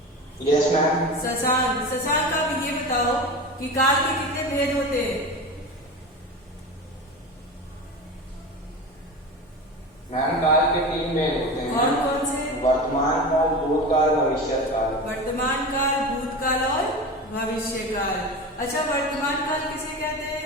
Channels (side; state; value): both; normal; correlation 0.28